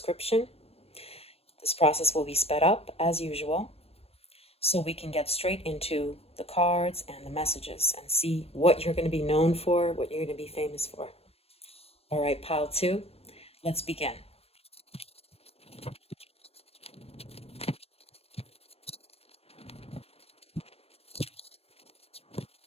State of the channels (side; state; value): right; late; 0.29 ms